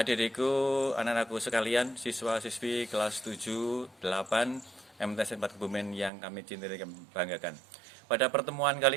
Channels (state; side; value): drops out; left; at 6.1 s